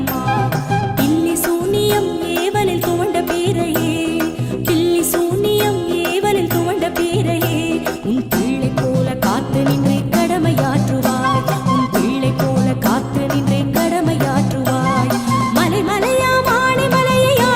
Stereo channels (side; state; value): both; identical; correlation 1.00